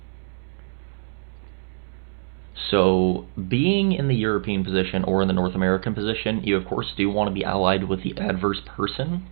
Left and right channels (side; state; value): left; silent; 62 dB below the other